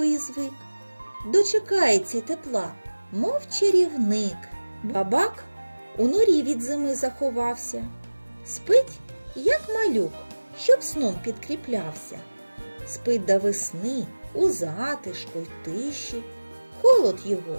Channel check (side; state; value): both; inverted; correlation -1.00